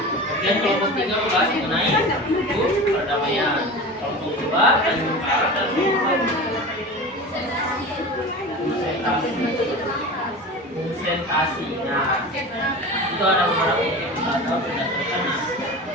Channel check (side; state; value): both; normal; correlation 0.32